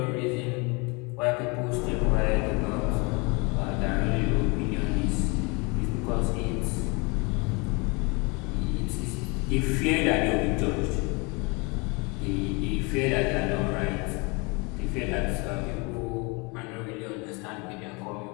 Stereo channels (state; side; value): quieter; right; 29.2 dB